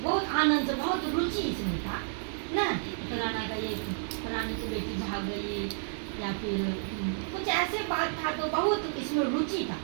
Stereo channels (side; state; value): left; silent; 57 dB below the other